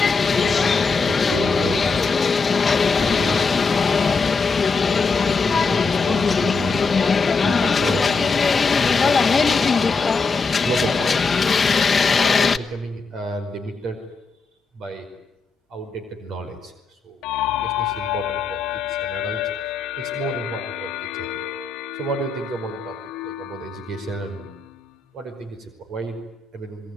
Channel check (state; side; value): quieter; right; 4.4 dB